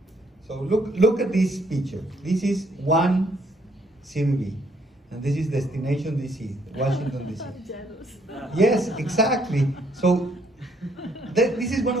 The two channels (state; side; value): normal; both; correlation 0.68